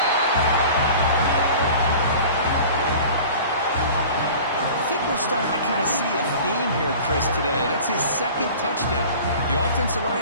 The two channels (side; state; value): both; inverted; correlation -0.42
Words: I think we're starting to kind of see a theme here, Chris, today. That's his 2nd touchdown. The offensive